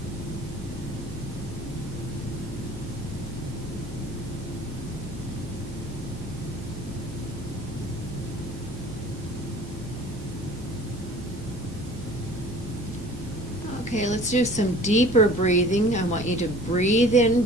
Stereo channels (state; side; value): normal; both; correlation 0.47